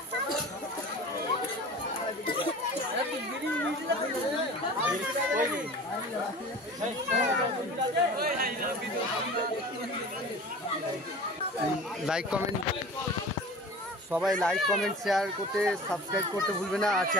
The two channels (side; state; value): both; normal; correlation 0.39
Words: লাইক কমেন্ট সবাই লাইক কমেন্ট শেয়ার করতে, সাবস্ক্রাইব করতে ভুলবে না। আর